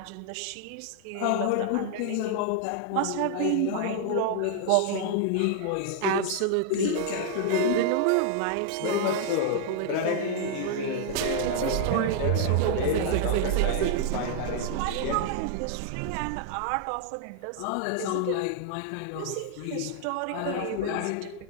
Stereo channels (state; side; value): different; both; correlation -0.01